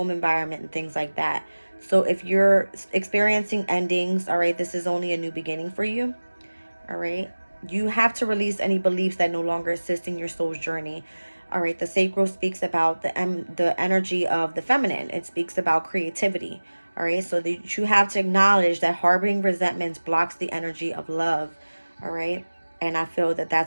environment, and things like that. So if you're experiencing endings, all right, this is only a new beginning for you. All right, you have to release any beliefs that no longer assist in your soul's journey. All right, the sacral speaks about the energy of the feminine. It speaks about creativity. All right, so you have to acknowledge that harboring resentments blocks the energy of love. All right. And I feel that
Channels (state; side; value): inverted; both; correlation -1.00